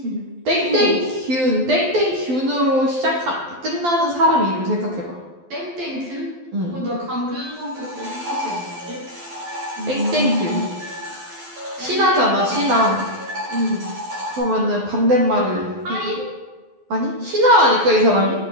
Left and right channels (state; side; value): late; left; 12 ms